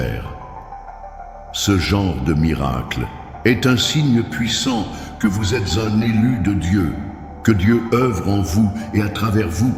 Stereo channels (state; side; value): identical; both; correlation 1.00